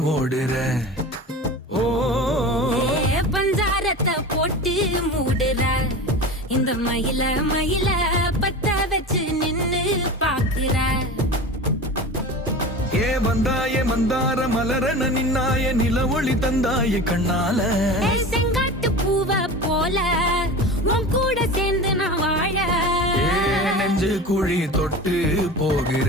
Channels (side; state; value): both; normal; correlation 0.32